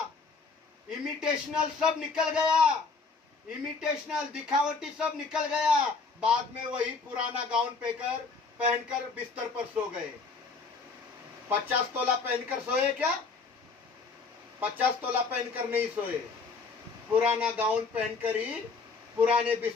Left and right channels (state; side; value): quieter; right; 4.5 dB